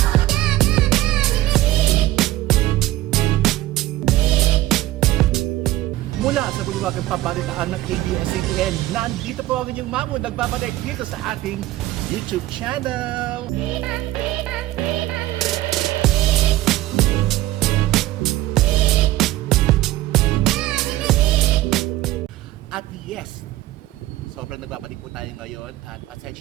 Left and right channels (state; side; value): quieter; left; 16.3 dB